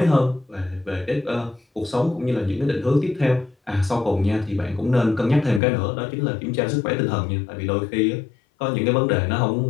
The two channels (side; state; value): right; drops out; at 5.6 s